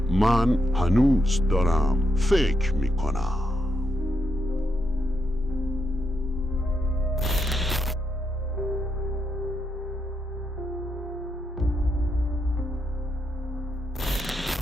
من هنوز دارم فکر می کنم.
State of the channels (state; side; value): normal; both; correlation 0.81